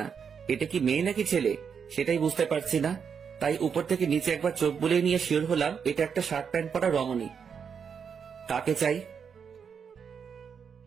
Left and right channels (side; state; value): left; quieter; 6.7 dB